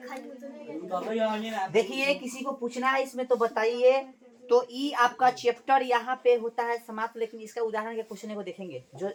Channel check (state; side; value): identical; both; correlation 1.00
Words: देखिए किसी को पूछना है इसमें तो बताइए। तो ई आपका चैप्टर यहाँ पे होता है समाप्त, लेकिन इसका उदाहरण के क्वेश्चन को देखेंगे जो